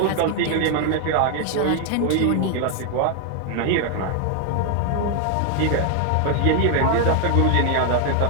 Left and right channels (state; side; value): different; both; correlation 0.01